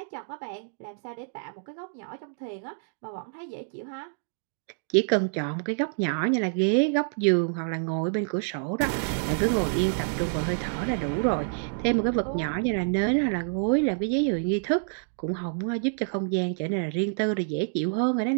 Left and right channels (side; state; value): left; silent; digital silence